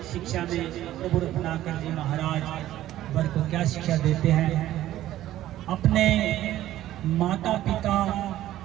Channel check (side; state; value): left; quieter; 13.7 dB